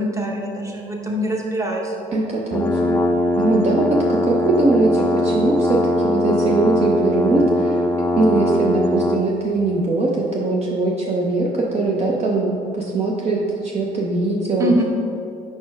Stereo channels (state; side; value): normal; both; correlation 0.68